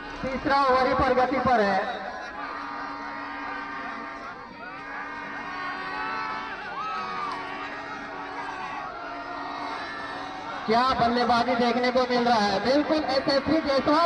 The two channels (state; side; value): identical; both; correlation 1.00